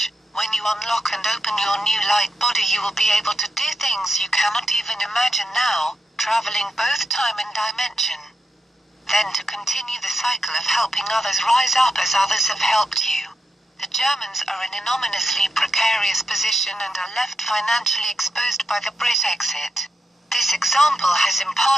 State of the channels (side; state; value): both; normal; correlation 0.84